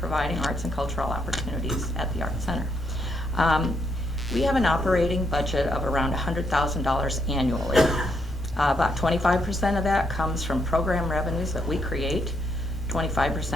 arts and cultural opportunities at the Arts Center. We have an operating budget of around $100,000 annually. About 25% of that comes from program revenues that we create.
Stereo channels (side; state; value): both; normal; correlation 0.75